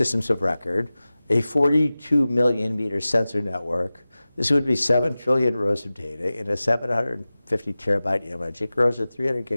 of record, a 42 million meter sensor network. This would be 7 trillion rows of data in a 750 terabyte image. It grows at 300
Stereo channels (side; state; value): both; inverted; correlation -0.97